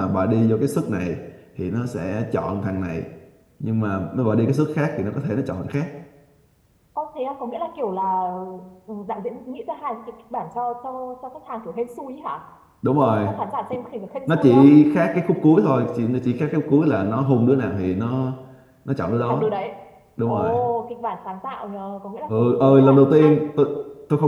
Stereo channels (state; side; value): identical; both; correlation 1.00